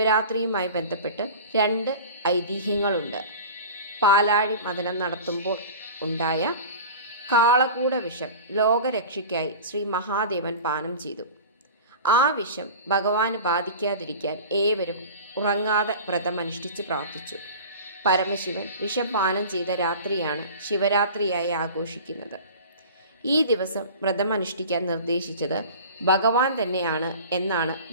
ബന്ധപ്പെട്ട് 2 ഐതിഹ്യങ്ങളുണ്ട്. പാലാഴി മഥനം നടത്തുമ്പോൾ ഉണ്ടായ കാളകൂട വിഷം ലോകരക്ഷയ്ക്കായി ശ്രീ മഹാദേവൻ പാനം ചെയ്തു. ആ വിഷം ഭഗവാന് ബാധിക്കാതിരിക്കാൻ ഏവരും ഉറങ്ങാതെ വ്രതമനുഷ്ഠിച്ച് പ്രാർത്ഥിച്ചു. പരമശിവൻ വിഷം പാനം ചെയ്ത രാത്രിയാണ് ശിവരാത്രിയായി ആഘോഷിക്കുന്നത്. ഈ ദിവസം വ്രതമനുഷ്ഠിക്കാൻ നിർദ്ദേശിച്ചത് ഭഗവാൻ തന്നെയാണ് എന്നാണ്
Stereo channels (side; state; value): both; inverted; correlation -0.37